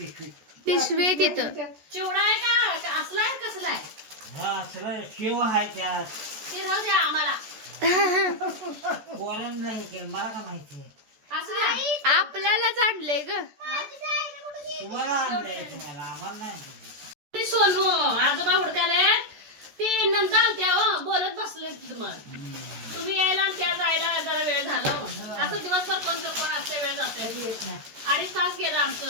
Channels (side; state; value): left; late; 14 ms